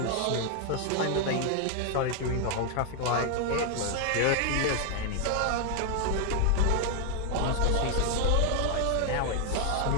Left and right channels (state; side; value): different; both; correlation 0.00